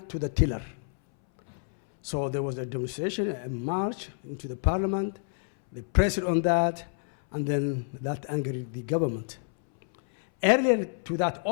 to the tiller. So there was a demonstration, a march into the parliament. They pressed on that, and then that angered the government. Earlier to that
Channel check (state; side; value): silent; right; 59 dB below the other